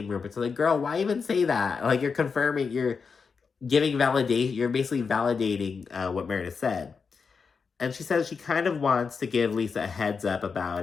rumors. So like, girl, why even say that? Like, you're confirming, you're giving validation, you're basically validating what Meredith said. And she says she kind of wants to give Lisa a heads up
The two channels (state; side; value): quieter; right; 5.4 dB